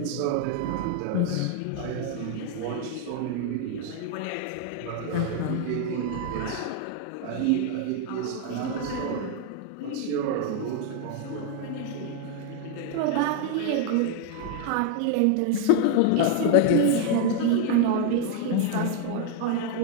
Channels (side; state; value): both; different; correlation 0.00